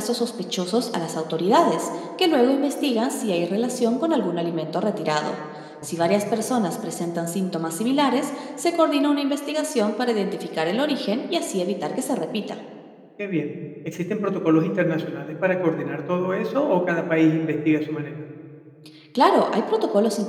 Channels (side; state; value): both; identical; correlation 1.00